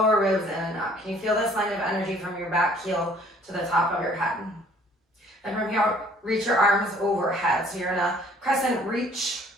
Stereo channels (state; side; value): normal; both; correlation 0.57